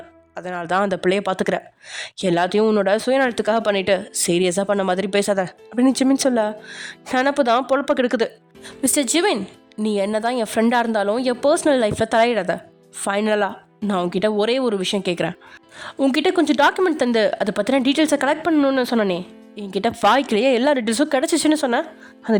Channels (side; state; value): both; identical; correlation 1.00